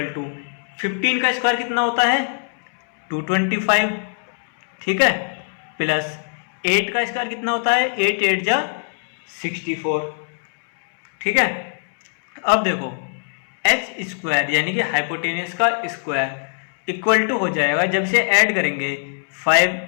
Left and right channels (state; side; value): silent; right; 65 dB below the other